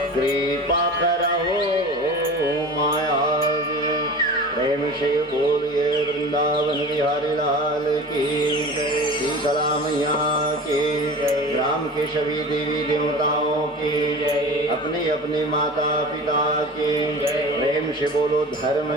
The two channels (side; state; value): both; normal; correlation 0.36